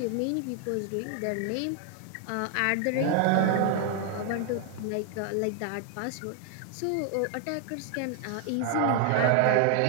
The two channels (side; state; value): both; different; correlation 0.00